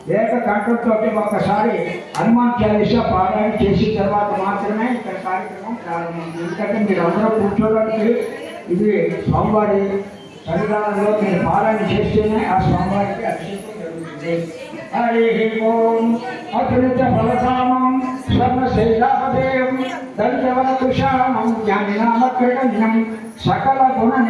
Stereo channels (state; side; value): identical; both; correlation 1.00